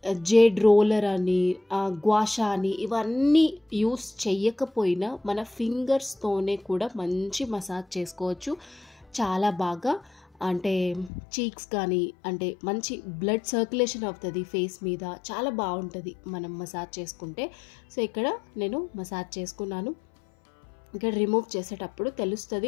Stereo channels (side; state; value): right; drops out; at 11.1 s